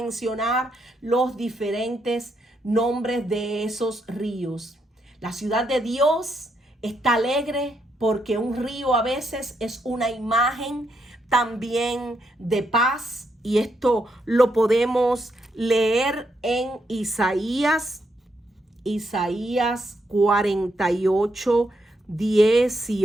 los diferentes nombres de esos ríos. La ciudad de Dios está alegre porque un río a veces es una imagen también de paz, y esto lo podemos leer en Isaías 48,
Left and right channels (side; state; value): both; normal; correlation 0.78